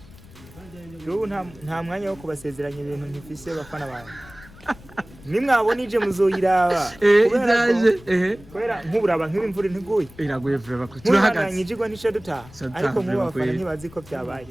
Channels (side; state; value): left; noise; rumble, 21 dB below the sound